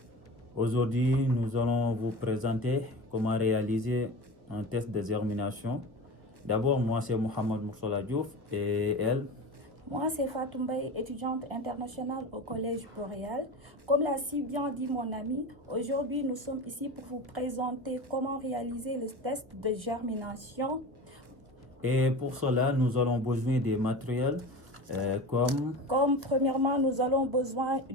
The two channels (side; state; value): left; late; 1.0 ms